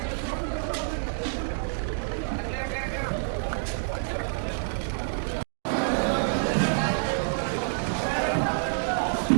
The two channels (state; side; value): silent; left; digital silence